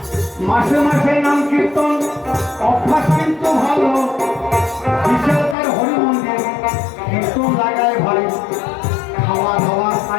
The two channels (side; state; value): right; drops out; at 5.6 s